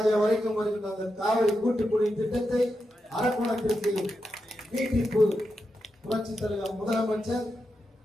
வரைக்கும் வருகின்ற அந்த காவிரி கூட்டு குடிநீர் திட்டத்தை அரக்கோணத்திற்கு நீட்டிப்பு. புரட்சி தலைவர் முதலமைச்சர்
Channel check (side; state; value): both; normal; correlation 0.87